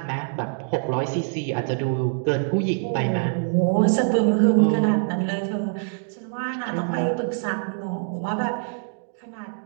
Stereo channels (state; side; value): silent; left; digital silence